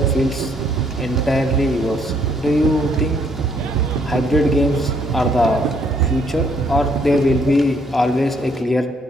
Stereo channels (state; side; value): normal; both; correlation 0.68